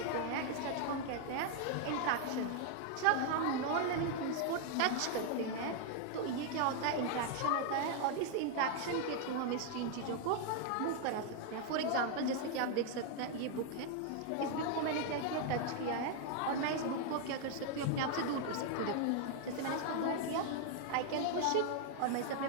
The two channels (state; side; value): different; both; correlation 0.00